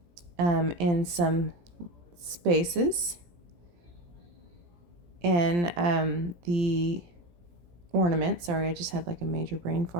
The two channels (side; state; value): left; late; 17 ms